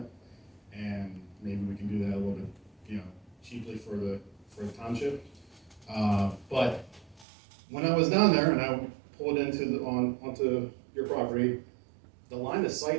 and maybe we can do that a little bit, cheaply for the township. But when I was down there and I pulled onto your property, the line of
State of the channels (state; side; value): drops out; left; at 7.2 s